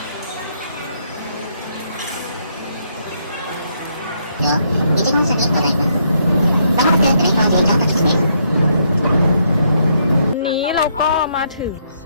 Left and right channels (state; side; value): inverted; both; correlation -0.74